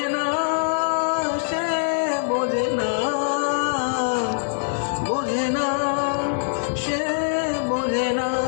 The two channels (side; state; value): right; silent; 56 dB below the other